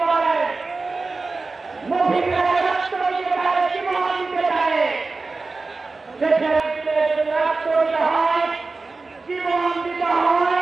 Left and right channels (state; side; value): quieter; left; 3.8 dB